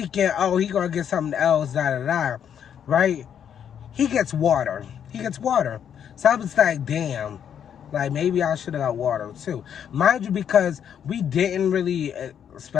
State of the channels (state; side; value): quieter; right; 8.7 dB